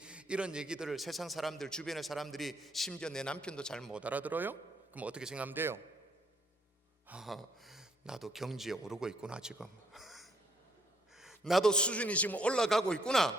이런 얘기들을 세상 사람들, 주변의 사람들이, 심지어 내 남편도 잘 못 알아들어요? 그럼 어떻게 생각하면 돼요? 나도 경지에 오르고 있구나 지금. 나도 수준이 지금 올라가고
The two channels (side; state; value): both; normal; correlation 0.69